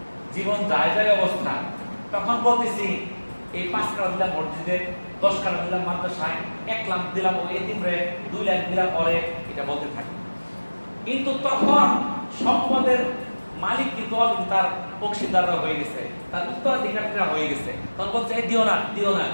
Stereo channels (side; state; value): both; inverted; correlation -1.00